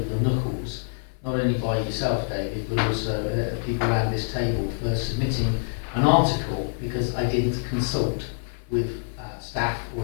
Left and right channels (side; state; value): right; silent; 61 dB below the other